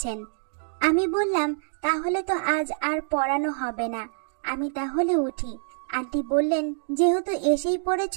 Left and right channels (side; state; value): left; silent; digital silence